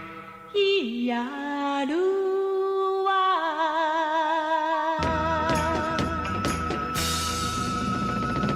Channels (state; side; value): identical; both; correlation 1.00